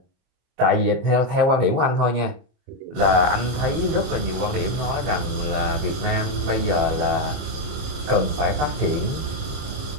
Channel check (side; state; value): left; late; 29 ms